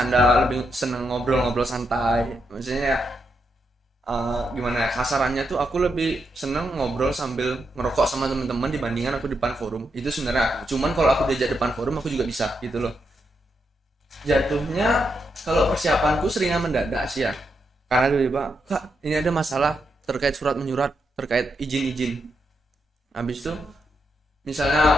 lebih senang ngobrol santai. Maksudnya gimana ya, kasarannya tuh aku lebih senang ngobrol sambil ngerokok sama teman-teman dibandingkan aku depan forum. Itu sebenarnya aku. Cuman kalau aku diajak depan forum aku juga bisa gitu loh. Jatuhnya kalau persiapanku seringnya mendadak sih ya. Karena tiba-tiba, Kak, ini ada masalah terkait surat menyurat, terkait izin. Habis itu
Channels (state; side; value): normal; both; correlation 0.82